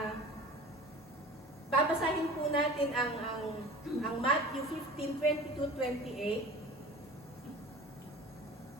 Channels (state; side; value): normal; both; correlation 0.39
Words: Babasahin po natin ang Matthew 15:22-28.